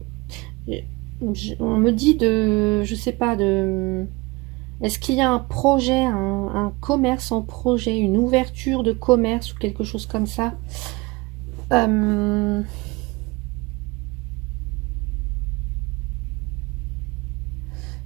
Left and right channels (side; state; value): left; quieter; 23.7 dB